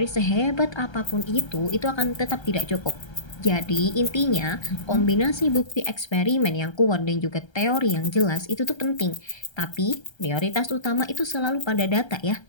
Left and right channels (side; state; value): right; late; 1.3 ms